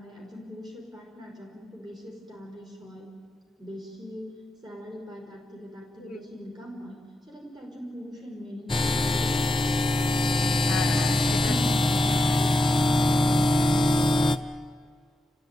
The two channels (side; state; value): both; normal; correlation 0.87